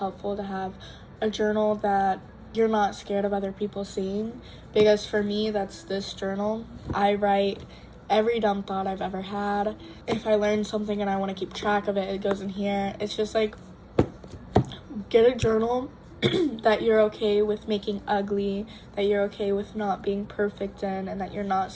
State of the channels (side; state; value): both; identical; correlation 1.00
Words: to have a journal that you're not scared of other people seeing, because for me, that's this journal. I write every dumb thought I've ever had. If I learn something and I want to keep track of it, it goes in here. It's just like, get a journal that you're okay with making ugly, that you're okay with not being perfect in, and that you're not